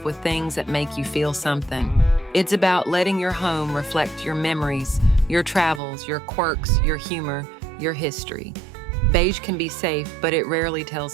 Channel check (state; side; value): drops out; left; at 5.8 s